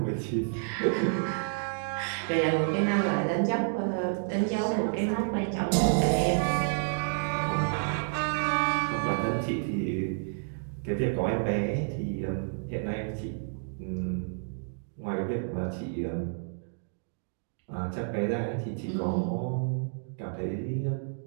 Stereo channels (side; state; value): left; silent; digital silence